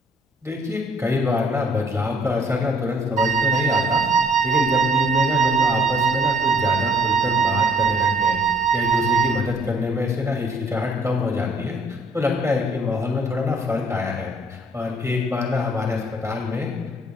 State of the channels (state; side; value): normal; both; correlation 0.60